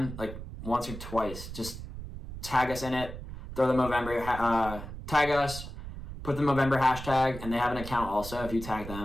like once or twice, just tag us in it, throw the Movember, tag us, put the Movember hashtag, and they have an account also. If you tag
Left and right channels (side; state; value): right; noise; rumble, 10 dB below the sound